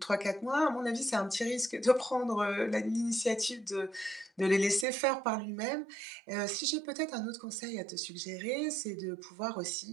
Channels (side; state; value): left; drops out; at 4.9 s